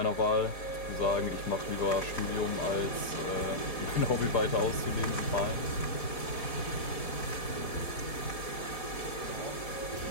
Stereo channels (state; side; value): late; right; 4.9 ms